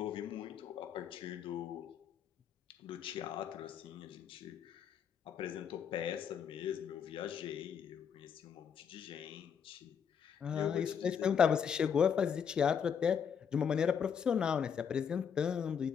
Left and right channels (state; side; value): quieter; right; 7.4 dB